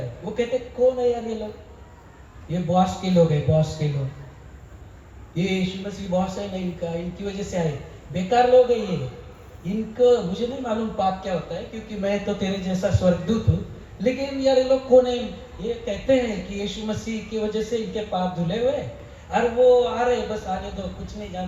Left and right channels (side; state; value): both; identical; correlation 1.00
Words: वो कहते कौन है यार ये लोग? ये बॉस के लोग है, बॉस के लोग, ये यीशु मसीह बॉस है नहीं इनका, इनकी वजह से आए, बेकार लोग है ये, इनको मुझे नहीं मालूम पाप क्या होता है, क्योंकि मैं तो तेरे जैसा स्वर्गदूत हूँ, लेकिन यार ये लोग कौन है? ये कहते हैं कि यीशु मसीह की वजह से इनके पाप धुले हुए, और वो आ रहे, बस आने दो, कुछ नहीं